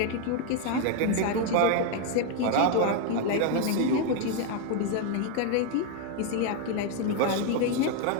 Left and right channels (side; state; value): both; different; correlation 0.01